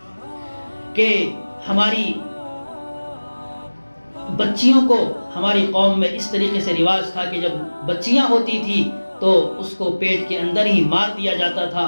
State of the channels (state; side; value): inverted; both; correlation -1.00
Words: کہ ہماری بچیوں کو ہماری قوم میں اس طریقے سے رواج تھا کہ جب بچیاں ہوتی تھی تو اس کو پیٹ کے اندر ہی مار دیا جاتا